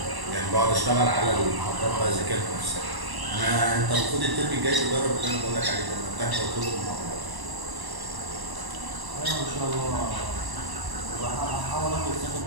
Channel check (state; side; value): late; left; 1.0 ms